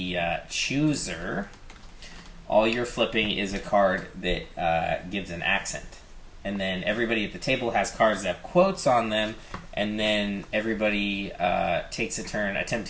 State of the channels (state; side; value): identical; both; correlation 1.00